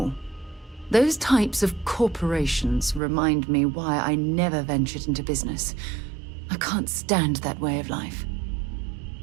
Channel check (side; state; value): left; drops out; at 3.0 s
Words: Those types of corporations remind me why I never ventured into business. I can't stand that way of life.